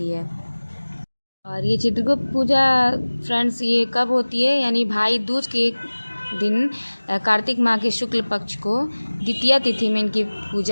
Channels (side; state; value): both; inverted; correlation -1.00